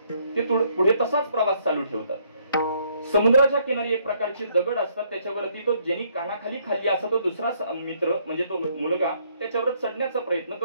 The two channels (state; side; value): inverted; both; correlation -0.68